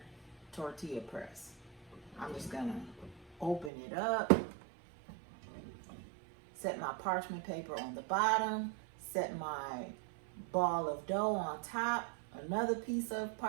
tortilla press. I'm just gonna open it up, set my parchment paper on the bottom, set my ball of dough on top, another piece of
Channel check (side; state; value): left; drops out; at 3.7 s